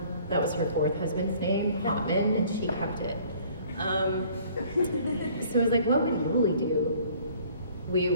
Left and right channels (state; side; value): inverted; both; correlation -0.55